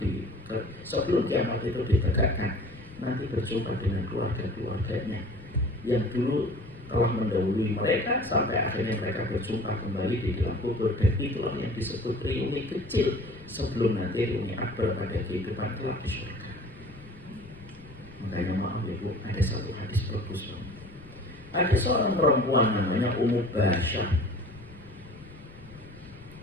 itu ditegakkan, nanti berjumpa dengan keluarga-keluarganya yang dulu telah mendahului mereka sampai akhirnya mereka berjumpa kembali di dalam kubur. Dan itulah yang disebut reuni kecil sebelum nanti reuni akbar pada kehidupan kelak di surga. Makanya maaf ya Bu, ada satu hadis bagus. Ada seorang perempuan namanya Ummu Basyah,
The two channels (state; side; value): noise; left; rumble, 21 dB below the sound